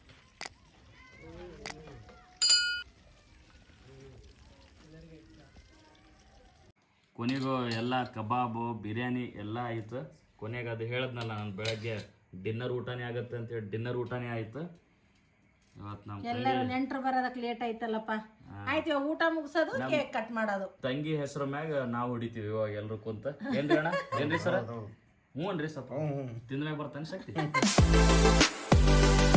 ಕೊನೆಗೂ ಎಲ್ಲ ಕಬಾಬು ಬಿರಿಯಾನಿ ಎಲ್ಲ ಆಯಿತು. ಕೊನೆಗೆ ಅದು ಹೇಳಿದ್ನಲ್ಲ ನಾನು ಬೆಳಗ್ಗೆ ಡಿನ್ನರ್ ಊಟನೇ ಆಗುತ್ತೆ ಅಂತ ಹೇಳಿ, ಡಿನ್ನರ್ ಊಟನೇ ಆಯಿತು ಇವತ್ತು. ನಮ್ಮ ಎಲ್ಲರೂ ನೆಂಟರು ಬರೋದಕ್ಕೆ ಲೇಟ್ ಆಯ್ತಲ್ಲಪ್ಪ. ಆಯ್ತು, ಇವಾಗ ಊಟ ಮುಗಿಸೋದು, ಕೇಕ್ ಕಟ್ ಮಾಡೋದು. ತಂಗಿ ಹೆಸರು ಮ್ಯಾಗ ನಾವು ಹೊಡಿತೀವಿ ಇವಾಗ ಎಲ್ರು ಕುಂತ. ಏನ್ರಿ ಅಣ್ಣ? ಏನ್ರಿ ಸರ? ಹ್ಞೂ ಅನ್ರಿ ಸ್ವಲ್ಪ ತಿಂದ್ಮ್ಯಾಗ ಬರ್ತಾನೆ ಶಕ್ತಿ.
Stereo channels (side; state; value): both; identical; correlation 1.00